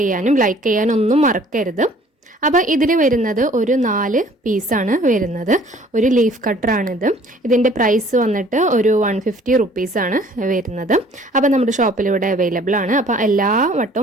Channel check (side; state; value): both; normal; correlation 0.55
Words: ചെയ്യാനും ലൈക്ക് ചെയ്യാനും ഒന്നും മറക്കരുത്. അപ്പോൾ ഇതിൽ വരുന്നത് ഒരു 4 പീസാണ് വരുന്നത്. ഒരു ലീഫ് കട്ടറാണിത്. ഇതിൻ്റെ പ്രൈസ് വന്നിട്ട് ഒരു 150 റുപ്പീസാണ് വരുന്നത്. അപ്പോൾ നമ്മുടെ ഷോപ്പിൽ ഇവിടെ അവൈലബിൾ ആണ്. അപ്പോൾ എല്ലാ